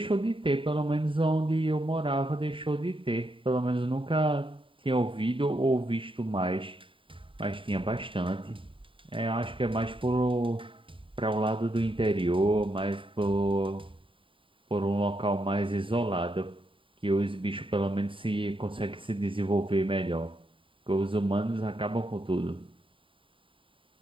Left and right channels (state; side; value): late; left; 0.25 ms